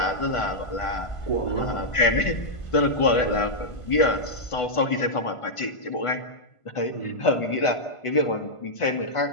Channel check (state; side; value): late; right; 1.5 ms